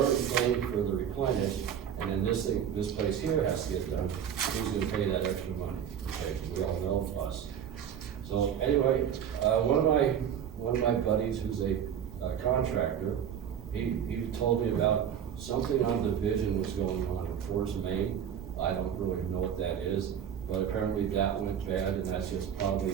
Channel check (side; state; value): left; quieter; 8.7 dB